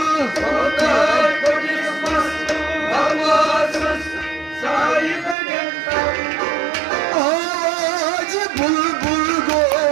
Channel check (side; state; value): left; drops out; at 5.4 s